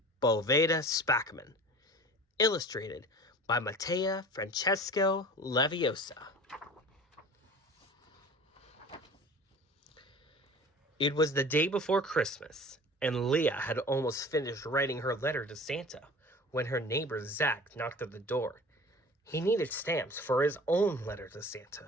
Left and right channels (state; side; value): normal; both; correlation 0.41